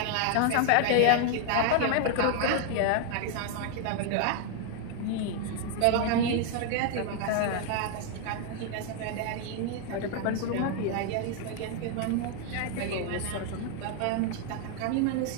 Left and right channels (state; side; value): different; both; correlation 0.00